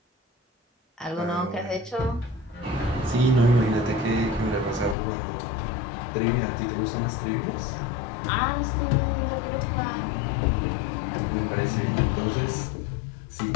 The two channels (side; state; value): right; drops out; at 5.0 s